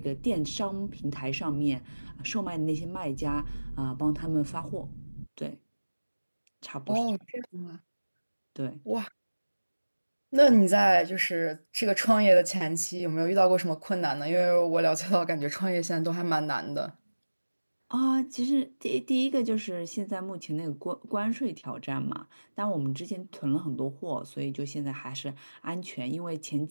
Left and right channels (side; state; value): both; inverted; correlation -1.00